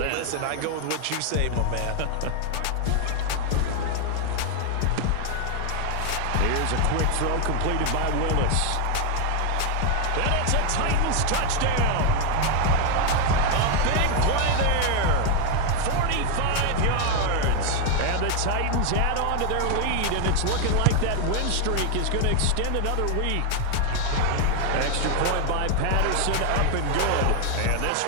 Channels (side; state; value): both; different; correlation 0.01